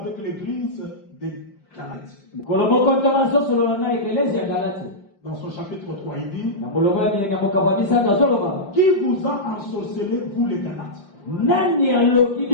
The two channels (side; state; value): right; late; 5.0 ms